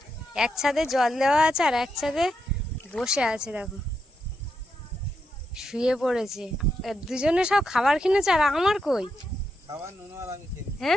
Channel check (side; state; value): both; normal; correlation 0.83